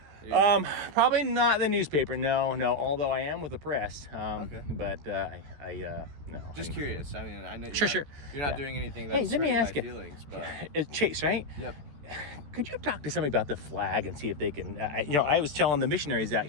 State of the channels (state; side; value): late; left; 14 ms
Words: Yeah. Probably not the newspaper. No. Although I am with the press. Okay. But no. Just curious. I mean, I know Sure. you're not Yeah. doing anything Hey, that's let me hurting my ask you. feelings, but It's Chase, right? yep. Could you talk to somebody about the flag and see if they can? I was telling the missionaries out